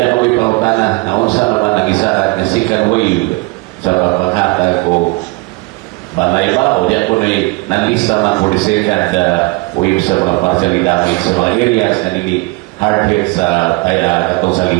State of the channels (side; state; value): left; quieter; 24.7 dB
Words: ako ipautan na unsa naman nag-isaan na second wave sa paghatag ko balay ba o diyan ko nalista man for the second wave sa mga partial damage sa mga areas na nili hard hit sa katong